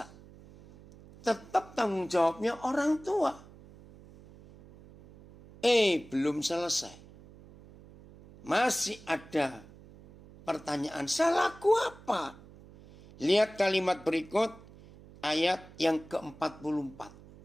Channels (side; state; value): right; noise; hum, 21 dB below the sound